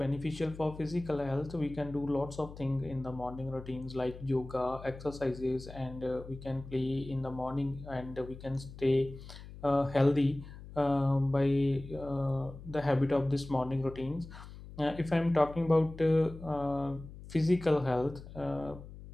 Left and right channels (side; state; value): left; noise; hum, 15 dB below the sound